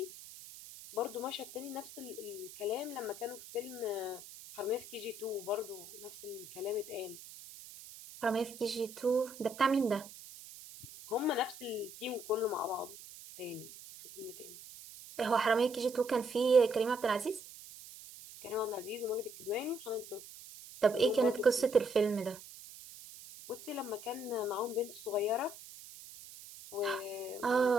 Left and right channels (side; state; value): right; noise; hiss, 16 dB below the sound